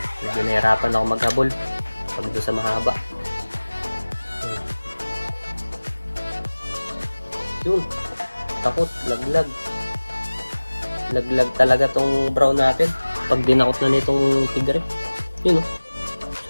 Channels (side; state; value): both; inverted; correlation -1.00